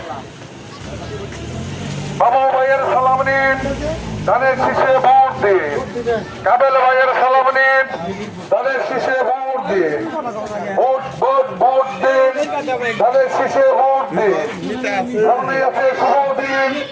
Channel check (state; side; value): identical; both; correlation 1.00